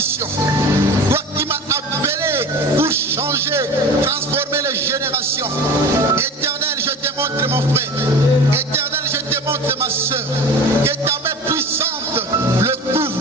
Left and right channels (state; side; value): normal; both; correlation 0.37